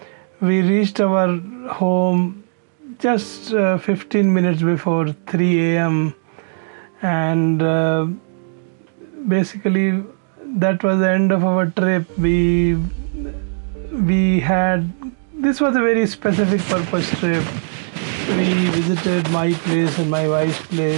We reached our home just 15 minutes before 3 a.m. and basically that was the end of our trip. We had, this was a very specific purpose trip. We visited my place and my wife's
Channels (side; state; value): left; silent; digital silence